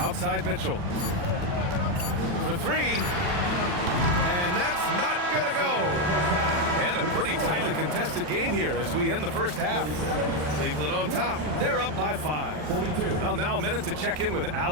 Mitchell. For 3. And that's not gonna go. And a pretty tightly contested game here as we end the first half. Cleveland on top. They're up by 5. Well, now a minute to check in with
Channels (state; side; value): late; left; 40 ms